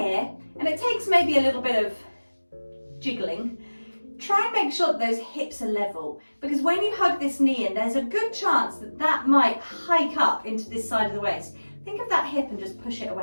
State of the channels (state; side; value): inverted; both; correlation -1.00